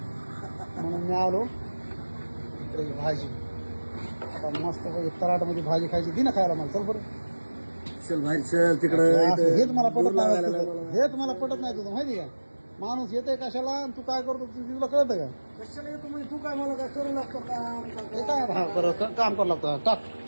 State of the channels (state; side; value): inverted; both; correlation -1.00